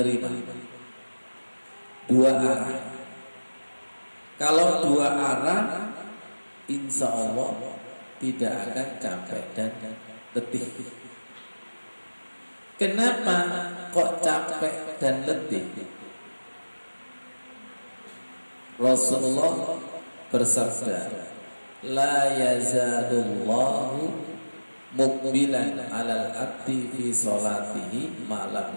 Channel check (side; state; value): both; inverted; correlation -1.00